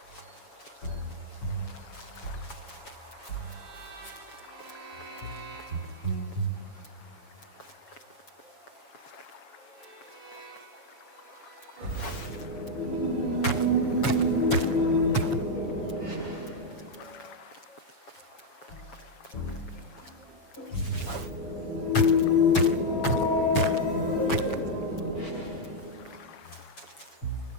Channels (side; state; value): right; late; 7.2 ms